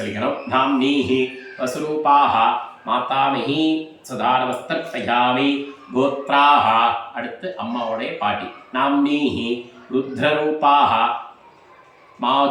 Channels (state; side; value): identical; both; correlation 1.00